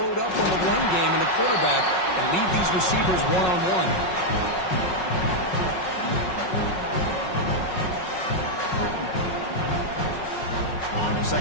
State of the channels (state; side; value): late; right; 5.4 ms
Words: up on the run game and the quarterback and leave these receivers one-on-one.